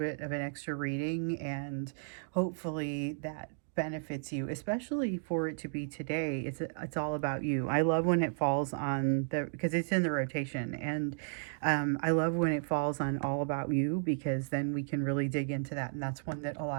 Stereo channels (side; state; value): left; silent; digital silence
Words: of an extra reading, and hopefully that benefits you, especially for it to be today. It's all about you. I love when it falls on the, because it's in the rotation, and I love when it falls on all about you, because then we can really dig into that, and that's one that a